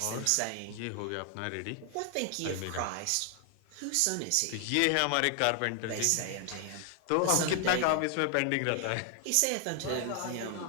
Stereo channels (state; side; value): different; both; correlation 0.00